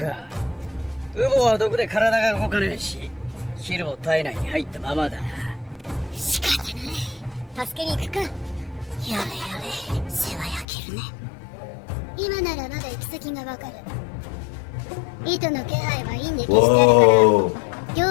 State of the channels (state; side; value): drops out; right; at 10.7 s